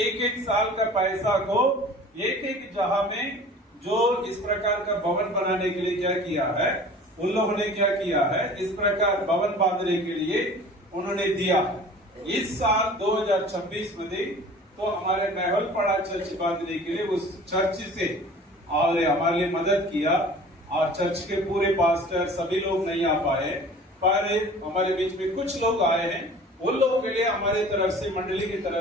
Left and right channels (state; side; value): normal; both; correlation 0.44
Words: साल का पैसा को एक जगह में जो इस प्रकार का भवन बनाने के लिए क्या किया है, उन लोगों ने क्या किया है, इस प्रकार भवन बांधने के लिए उन्होंने दिया। इस साल 2026 में तो हमारे महलपड़ा चर्च बांधने के लिए उस चर्च से और हमारे लिए मदद किया, और चर्च के पूरे पास्टर सभी लोग नहीं आ पाए, पर हमारे बीच में कुछ लोग आए हैं। उन लोगों के लिए हमारी तरफ से, मंडली की